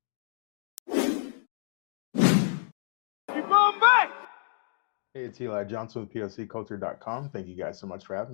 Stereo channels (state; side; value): silent; right; digital silence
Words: Hey, it's Eli Johnson with POCculture.com. Thank you guys so much for